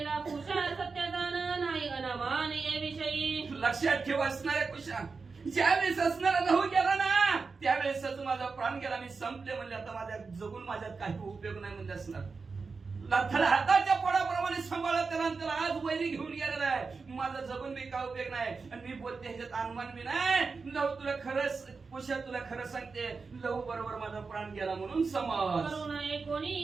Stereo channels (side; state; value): left; quieter; 4.6 dB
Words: कुशा सत्यदान नाही अनामान ये विषयी. लक्षात ठेव असणाऱ्या कुशा, ज्यावेळेस असणारा लहू गेला ना त्यावेळेसच माझा प्राण गेला. मी संपले म्हणजे आता माझ्या जगून माझ्यात काही उपयोग नाही म्हणजे असणार. त्याला हाताच्या पोळाप्रमाणे सांभाळत त्याला आज वैरी घेऊन गेलेला आहे. माझा जगून बी काय उपयोग नाही. आणि मी बोलते ह्याच्यात अनुमान बी नाही. लव तुला खरंच कुशा तुला खरं सांगते, लव बरोबर माझा प्राण गेला म्हणून समज. करू नये